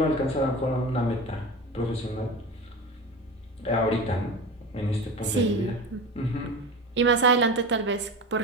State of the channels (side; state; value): both; normal; correlation 0.29